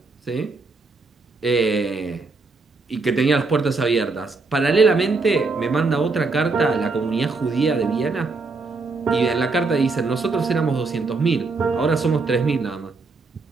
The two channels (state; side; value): quieter; left; 3.9 dB